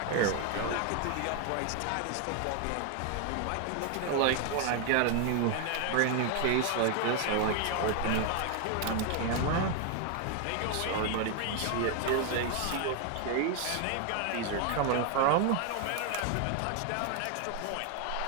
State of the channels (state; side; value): different; both; correlation 0.00